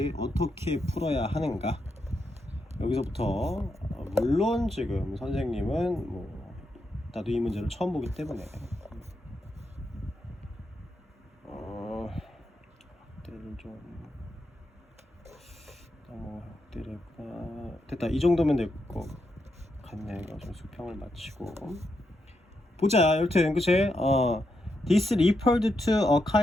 어떻게 풀어야 하는가 여기서부터 물론 지금 선생님은 뭐 나도 이 문제를 처음 보기 때문에 확대를 좀 너무 확대를 했구나. 됐다. 이 정도면 될 것 같네. 이거 좀 수평을 맞추고 보자. 여튼 그치 this referred to a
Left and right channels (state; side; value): normal; both; correlation 0.83